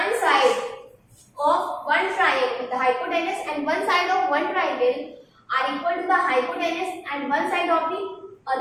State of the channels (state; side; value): identical; both; correlation 1.00